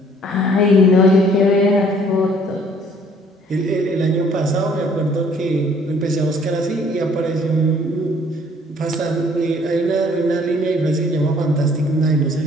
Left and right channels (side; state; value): both; normal; correlation 0.59